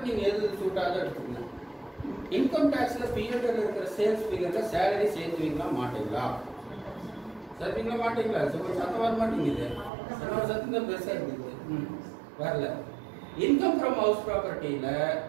நீங்கள் எது சூட்டாக எடுத்துக்கணும். இன்கம் டேக்ஸில் பிஎன்எல் இருக்கிற சேல்ஸ் ஃபிகரில் சேலரி சேர்த்துவீங்களா மாட்டீங்களா? சேர்த்துவீங்களா மாட்டீங்களா? சத்தம் வர மாட்டேங்குது. என்னோட சத்தம் தான் பெருசாக இருக்குது. வரல. இன்கம் ஃப்ரம் ஹவுஸ் ப்ராப்பர்ட்டியில்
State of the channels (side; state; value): left; drops out; at 9.9 s